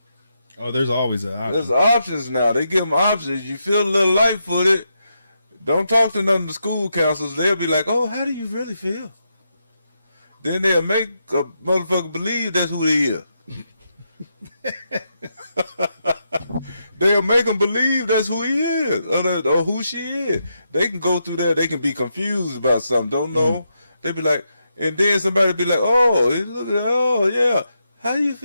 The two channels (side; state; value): both; inverted; correlation -0.83